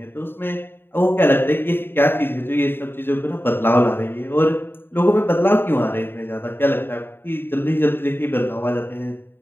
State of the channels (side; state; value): right; late; 0.10 ms